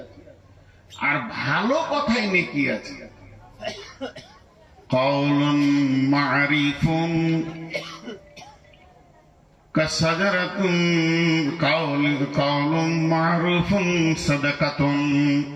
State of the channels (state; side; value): identical; both; correlation 1.00